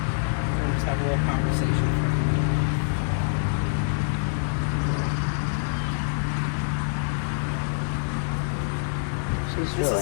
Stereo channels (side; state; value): right; silent; digital silence